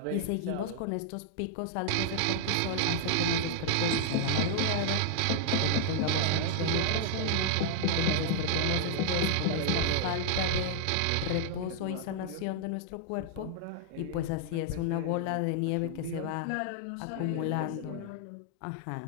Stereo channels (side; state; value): both; different; correlation 0.00